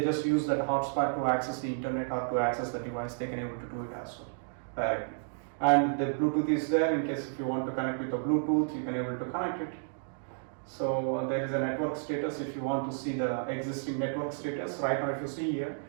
just use that hotspot to access the internet or to access the device. They can able to do it as well directly. And the Bluetooth is there. In case if you want to connect with the Bluetooth, you can able to connect it. So there is a network status. If you want to see the existing network status, right now if you see here,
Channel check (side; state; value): left; silent; digital silence